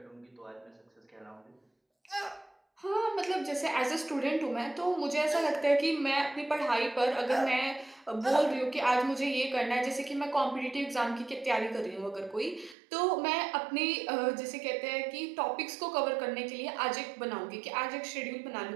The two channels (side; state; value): left; drops out; at 12.8 s